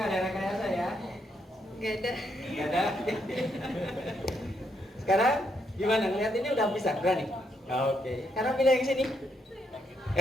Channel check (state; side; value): normal; both; correlation 0.77